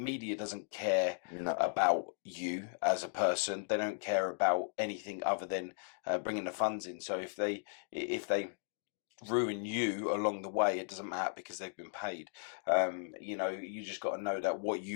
doesn't care about you as a person. They don't care about anything other than bringing the funds in. So if they ruin you along the way, it doesn't matter because they've been paid. You just got to know that what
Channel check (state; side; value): silent; right; digital silence